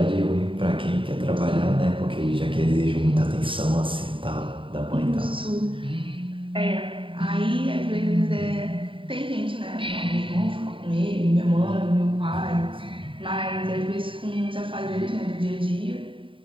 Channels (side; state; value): left; late; 0.25 ms